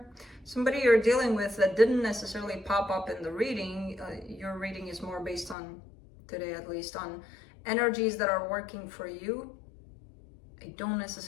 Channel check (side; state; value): right; drops out; at 5.6 s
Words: Somebody you're dealing with that didn't necessarily pop up in the reading. Your reading is more based on, today at least, on energies that are working for you. I don't